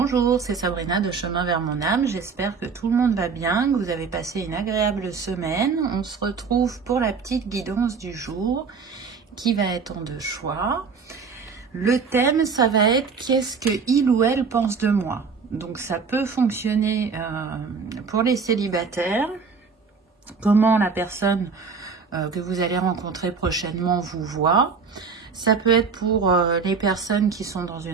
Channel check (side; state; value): left; quieter; 5.3 dB